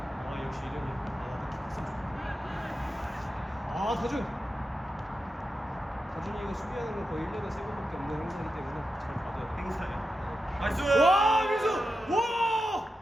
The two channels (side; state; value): both; normal; correlation 0.89